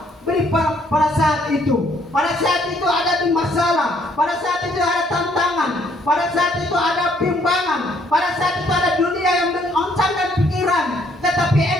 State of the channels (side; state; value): both; normal; correlation 0.66